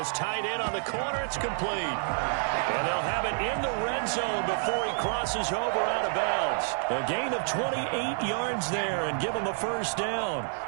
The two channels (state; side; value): silent; left; 59 dB below the other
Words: tight end on the corner. It's complete. And they'll have it in the red zone before he crosses over out of bounds. A gain of 28 yards there and give him a first down.